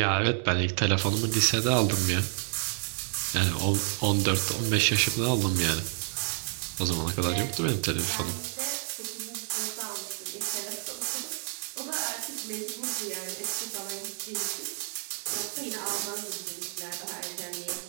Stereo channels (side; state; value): left; silent; 56 dB below the other